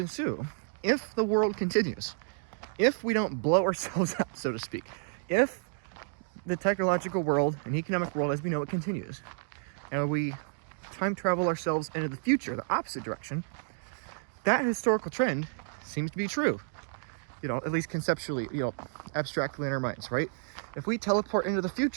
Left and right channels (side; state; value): left; silent; digital silence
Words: if the world continues, if we don't blow ourselves up, so to speak, if the technological world and economic world as we know it continues, and we time travel ourselves into the future, the opposite direction, that historical trend seems to be true. You know, at least conceptually, you know, abstractly in our minds, right? If we teleport into the